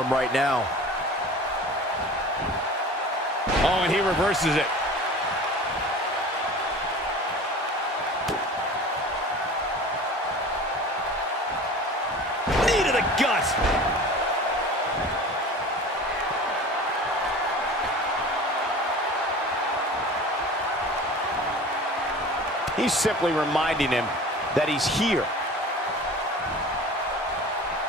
him right now. Oh, and he reverses it. Knee to the gut. He's simply reminding him that he's here.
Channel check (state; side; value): normal; both; correlation 0.39